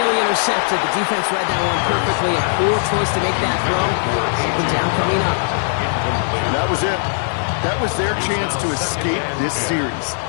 intercepted. The defense read that one perfectly. A poor choice to make that throw. Second down coming up. That was it. That was their chance to escape this series.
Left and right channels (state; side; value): silent; right; digital silence